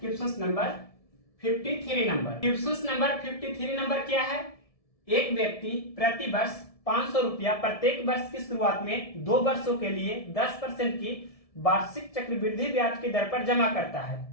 number 53 number. Question number 53 number क्या है? एक व्यक्ति प्रति वर्ष 500 रुपया प्रत्येक वर्ष की शुरुआत में 2 वर्षों के लिए 10% की वार्षिक चक्रवृद्धि ब्याज की दर पर जमा करता है,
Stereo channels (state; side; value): late; right; 1.7 ms